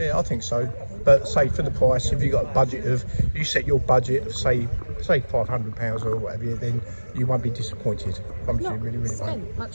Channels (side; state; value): both; inverted; correlation -1.00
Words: I think so. But say for the price, if you got a budget of, you set your budget of say £500 or whatever, then you won't be disappointed. Not really spent